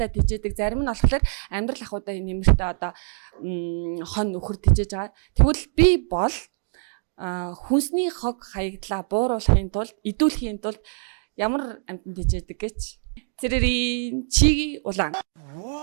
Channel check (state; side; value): silent; left; digital silence